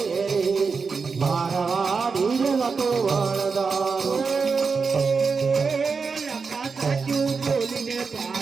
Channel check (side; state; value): left; quieter; 5.0 dB